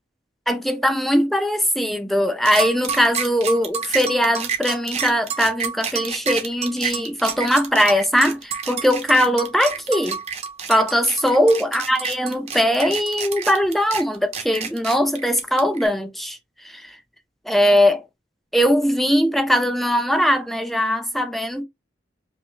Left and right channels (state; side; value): normal; both; correlation 0.80